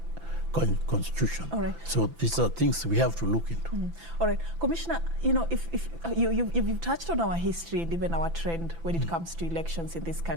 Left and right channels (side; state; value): left; late; 6.0 ms